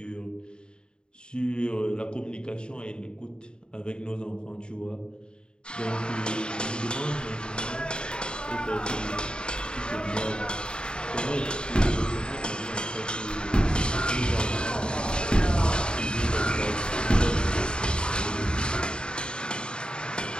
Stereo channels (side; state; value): right; late; 0.050 ms